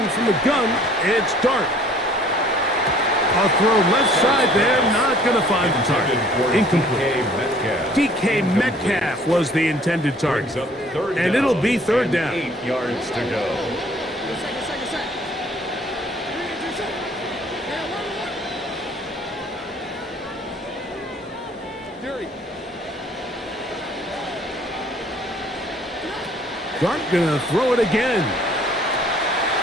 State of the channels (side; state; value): both; normal; correlation 0.55